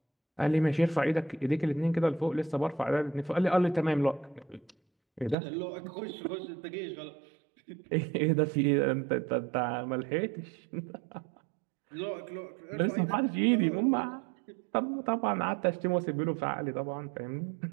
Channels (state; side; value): drops out; left; at 5.4 s